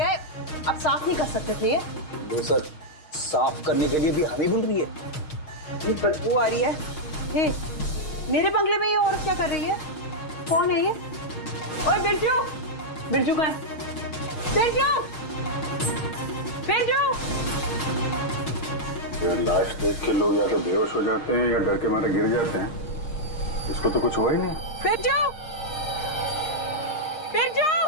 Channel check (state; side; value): late; right; 6.5 ms